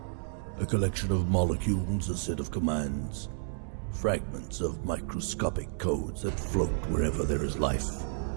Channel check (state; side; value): silent; left; digital silence